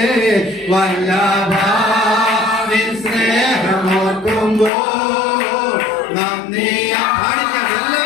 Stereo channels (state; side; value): drops out; right; at 4.7 s